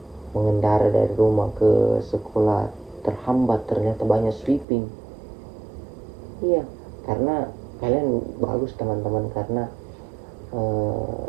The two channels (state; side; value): drops out; left; at 4.7 s